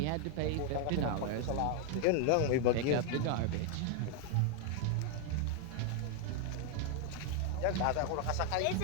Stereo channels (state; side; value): different; both; correlation 0.01